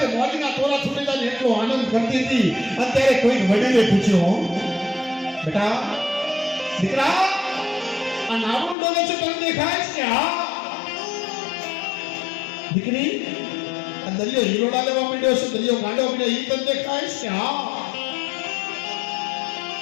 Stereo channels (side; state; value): right; drops out; at 8.8 s